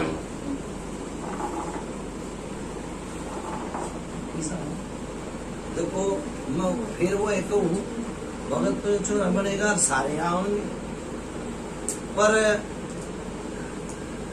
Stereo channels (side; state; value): both; identical; correlation 1.00